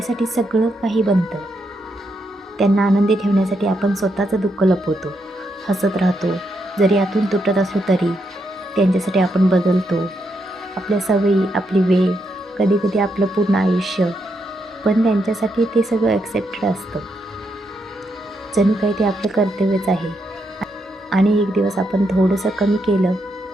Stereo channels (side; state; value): both; normal; correlation 0.80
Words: सगळं काही बनतं. त्यांना आनंदी ठेवण्यासाठी आपण स्वतःचं दुःख लपवतो, हसत राहतो. जरी आतून तुटत असलो तरी त्यांच्यासाठी आपण बदलतो. आपल्या सवयी, आपली वेळ, कधीकधी आपलं पूर्ण आयुष्य, पण त्यांच्यासाठी ते सगळं ॲक्सेप्टेड असतं. जणू काही ते आपलं कर्तव्यच आहे. आणि एक दिवस आपण थोडंसं कमी केलं